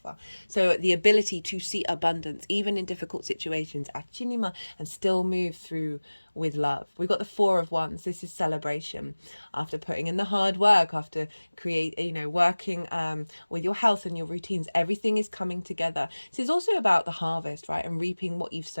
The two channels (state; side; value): inverted; both; correlation -1.00